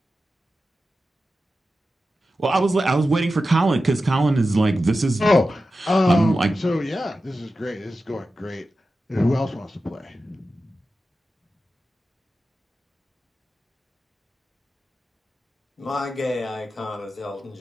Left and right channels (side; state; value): both; normal; correlation 0.92